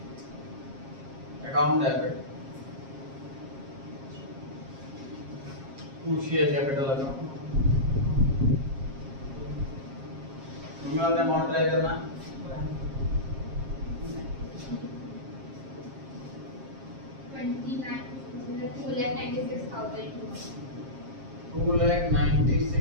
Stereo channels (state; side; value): late; left; 7.4 ms